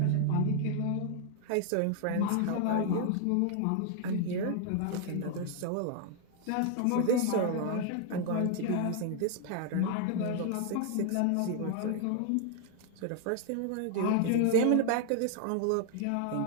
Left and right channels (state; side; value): different; both; correlation 0.00